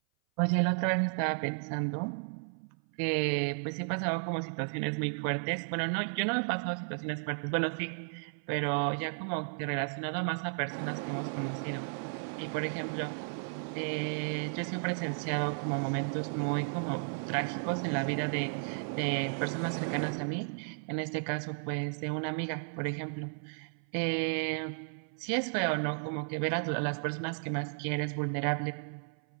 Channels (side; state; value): left; silent; 55 dB below the other